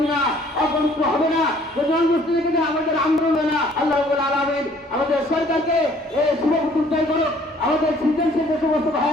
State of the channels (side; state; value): both; normal; correlation 0.58